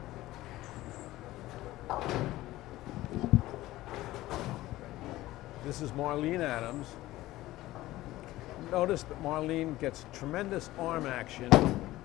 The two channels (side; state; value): right; quieter; 16.7 dB